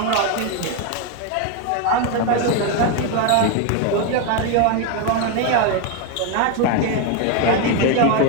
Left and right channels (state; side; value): different; both; correlation 0.02